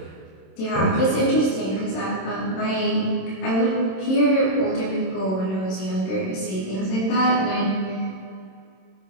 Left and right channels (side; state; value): right; late; 26 ms